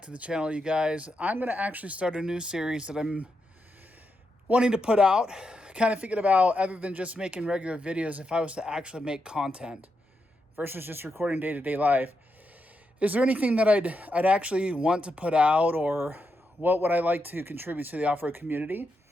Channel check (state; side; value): normal; both; correlation 0.84